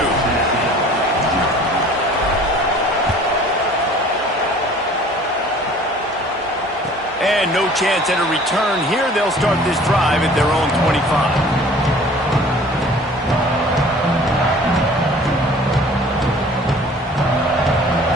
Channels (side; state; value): both; normal; correlation 0.49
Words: And no chance at a return here. They'll start this drive at their own 25.